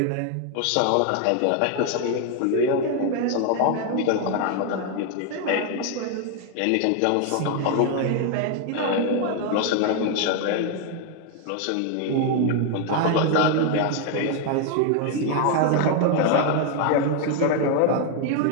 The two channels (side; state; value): both; different; correlation 0.01